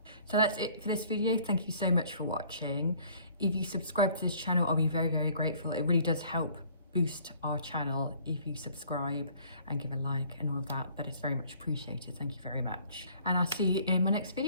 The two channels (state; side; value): inverted; both; correlation -0.55